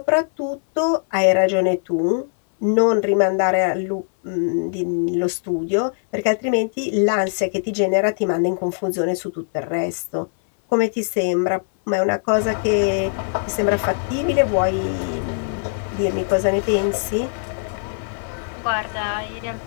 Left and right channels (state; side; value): silent; right; 60 dB below the other